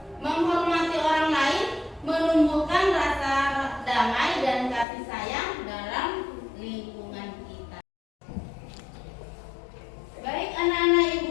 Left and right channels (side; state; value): right; drops out; at 4.9 s